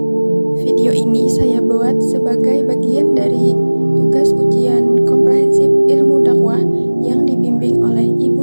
Video ini saya buat sebagai bagian dari tugas ujian komprehensif ilmu dakwah yang dibimbing oleh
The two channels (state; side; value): inverted; both; correlation -1.00